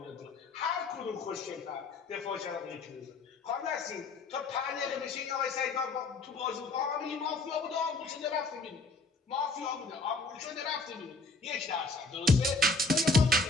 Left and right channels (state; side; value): quieter; right; 3.2 dB